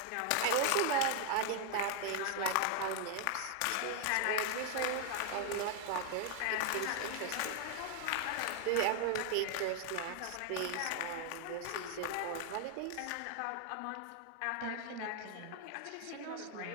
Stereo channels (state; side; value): different; both; correlation 0.00